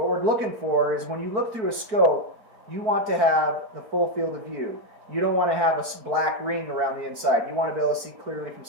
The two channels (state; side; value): late; left; 4.6 ms